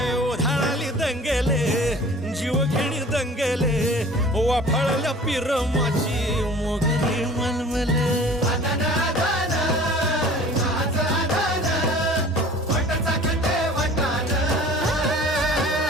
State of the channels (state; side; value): normal; both; correlation 0.45